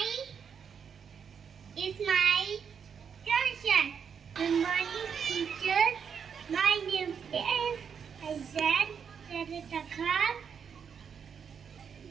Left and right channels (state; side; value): quieter; left; 7.0 dB